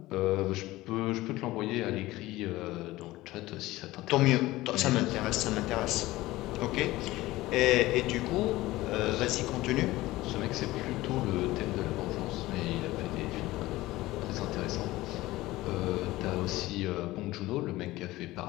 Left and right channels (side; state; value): right; quieter; 18.0 dB